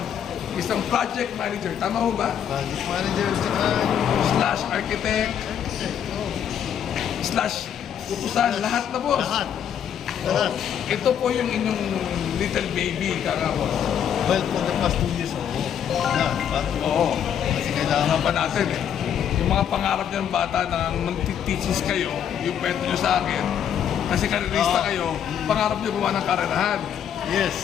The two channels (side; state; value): right; quieter; 9.0 dB